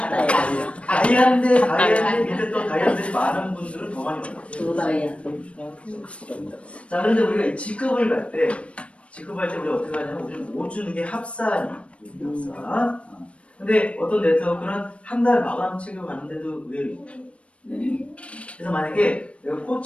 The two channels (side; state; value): right; late; 0.061 ms